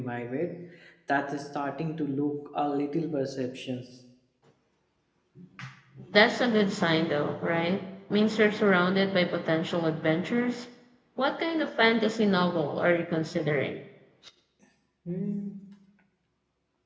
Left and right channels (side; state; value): both; identical; correlation 1.00